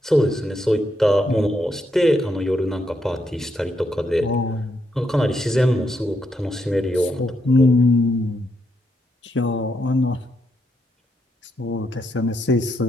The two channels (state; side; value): normal; both; correlation 0.79